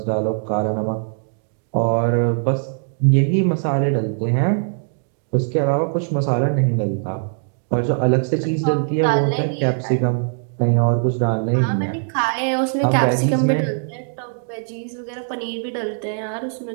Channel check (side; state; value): left; silent; 65 dB below the other